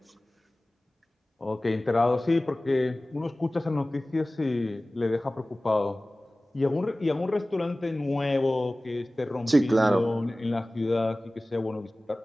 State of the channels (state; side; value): normal; both; correlation 0.98